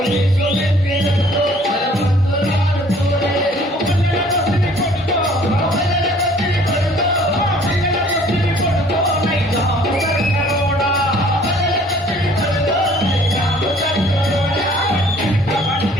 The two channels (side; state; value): both; normal; correlation 0.56